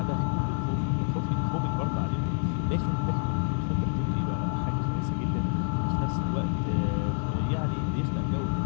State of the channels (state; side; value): silent; right; digital silence